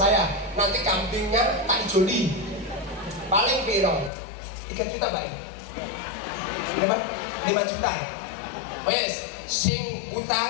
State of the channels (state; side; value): drops out; right; at 4.1 s